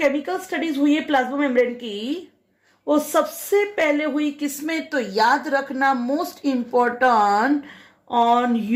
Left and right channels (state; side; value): identical; both; correlation 1.00